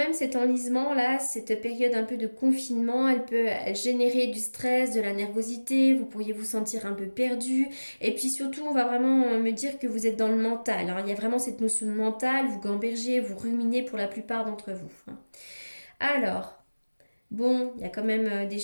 cet enlisement là, cette période un peu de confinement, elle générer du stress, de la nervosité, vous pourriez vous sentir un peu perdu. Et puis surtout, on va vraiment me dire que vous êtes dans le mental, hein. Il y a vraiment cette notion de mental, vous gambergez, vous ruminez pour la plupart d'entre vous, hein. Alors, bon, il y a quand même des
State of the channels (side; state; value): both; inverted; correlation -1.00